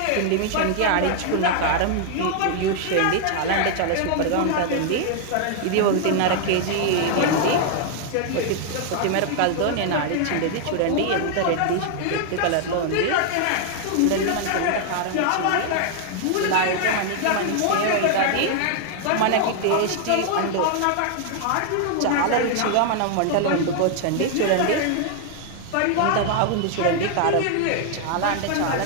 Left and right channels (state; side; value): different; both; correlation 0.00